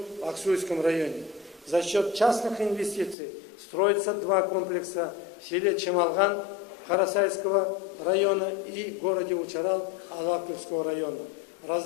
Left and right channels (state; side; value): drops out; right; at 3.2 s